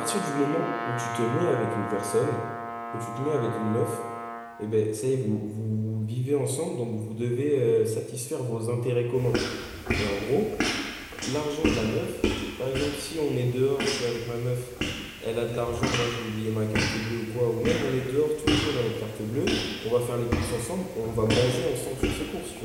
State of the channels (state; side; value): identical; both; correlation 1.00